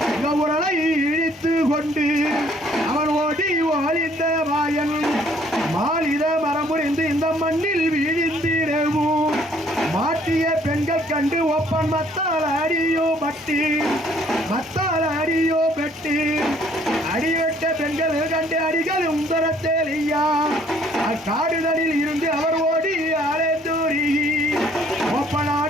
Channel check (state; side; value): normal; both; correlation 0.61